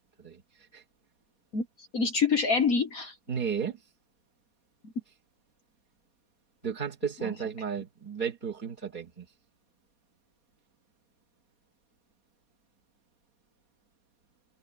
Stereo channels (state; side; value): late; right; 4.2 ms